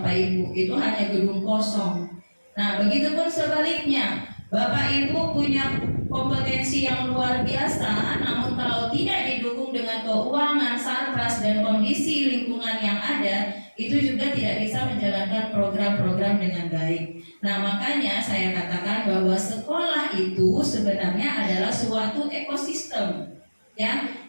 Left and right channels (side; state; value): both; inverted; correlation -1.00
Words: Ibu, itu hanya gedung kosong. Nah, begitupun sebaliknya, Bapak Ibu punya kompetensi yang luar biasa, namun kalau tidak didukung dengan keuangan, sarpras, dan kondisi lingkungan yang ada, itu juga tidak bisa menjalankan program-program dengan baik. Nah, makanya saya katakan bahwa sekolah itu sebenarnya adalah suatu ekosistem, ya.